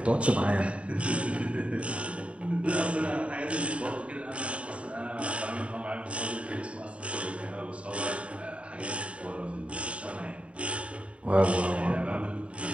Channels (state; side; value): late; left; 0.062 ms